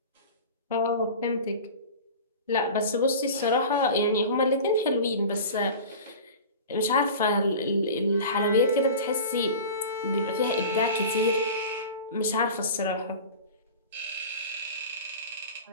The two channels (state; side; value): inverted; both; correlation -0.35